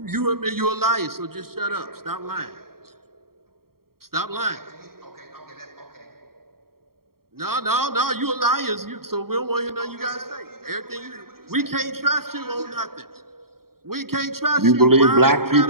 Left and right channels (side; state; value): left; late; 0.93 ms